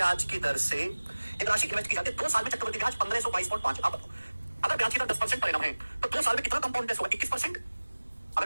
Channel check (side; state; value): both; inverted; correlation -1.00